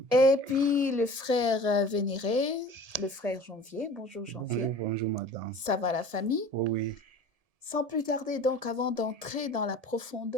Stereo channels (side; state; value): left; late; 1.7 ms